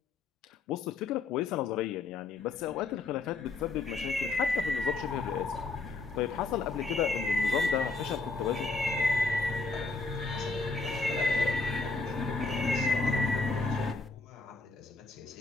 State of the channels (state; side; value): quieter; right; 3.7 dB